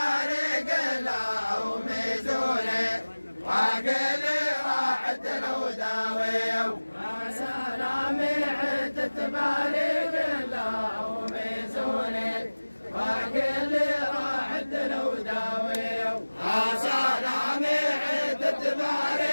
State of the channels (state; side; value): inverted; both; correlation -1.00